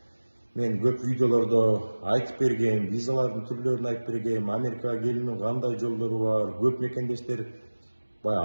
мен көп видеолордо айтып бергем, визалардын түрлөрүн айтып бергем, Америкага келүүнүн кандай жолдору бар. Көп мекендештер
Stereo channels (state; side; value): inverted; both; correlation -1.00